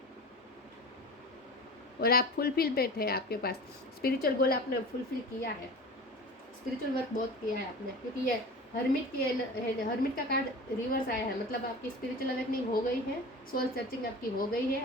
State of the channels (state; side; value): normal; both; correlation 0.35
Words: और आप फुलफिलमेंट है आपके पास। स्पिरिचुअल गोल आपने फुलफिल किया है, स्पिरिचुअल वर्क बहुत किया है आपने, क्योंकि ये हर्मिट का कार्ड रिवर्स आया है, मतलब आपकी स्पिरिचुअल अवेकनिंग हो गई है, सोल सर्चिंग आपकी हो गई